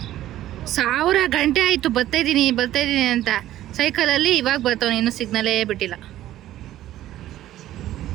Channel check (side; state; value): left; quieter; 13.6 dB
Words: 1000 ಗಂಟೆ ಆಯಿತು ಬರ್ತಾಯಿದ್ದೀನಿ ಅಂತ. ಸೈಕಲಲ್ಲಿ ಇವಾಗ ಬರ್ತಾವ, ಇನ್ನೂ ಸಿಗ್ನಲೇ ಬಿಟ್ಟಿಲ್ಲ.